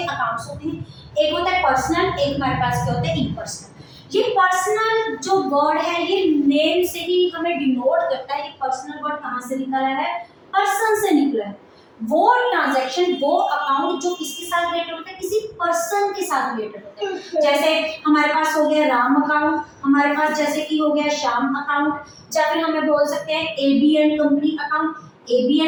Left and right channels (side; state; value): both; identical; correlation 1.00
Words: अकाउंट्स होते हैं। एक होता है पर्सनल, एक हमारे पास क्या होता है? इम्पर्सनल। ये पर्सनल जो वर्ड है, ये नेम से ही हमें डिनोट करता है कि पर्सनल वर्ड कहाँ से निकला है? पर्सन से निकला है। वो ट्रांजैक्शन, वो अकाउंट जो किसके साथ रिलेटेड होता है? किसी पर्सन के साथ रिलेटेड होता है। जैसे हमारे पास हो गया राम अकाउंट, हमारे पास जैसे कि हो गया श्याम अकाउंट, या फिर हमें बोल सकते हैं एबीएन कंपनी अकाउंट।